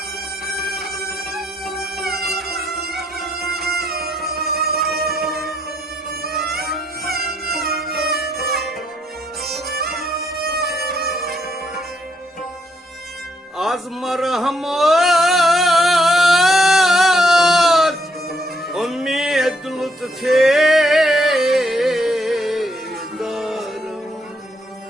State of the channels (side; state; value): both; normal; correlation 0.73